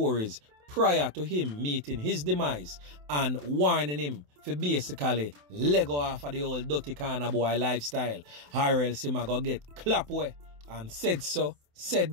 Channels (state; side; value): late; left; 27 ms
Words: prior to him meeting his demise and warning him for basically let go off of the old dirty corner boy lifestyle, or else him a go get ClapWeh. And said so,